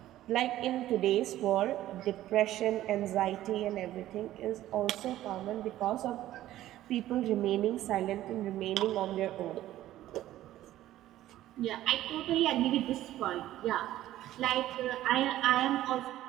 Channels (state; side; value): quieter; left; 14.0 dB